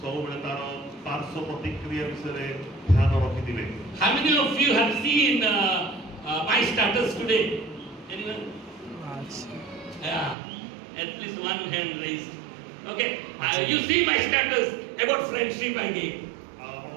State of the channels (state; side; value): drops out; left; at 10.4 s